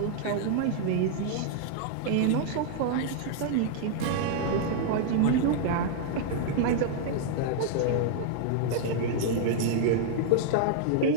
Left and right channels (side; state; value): both; different; correlation -0.01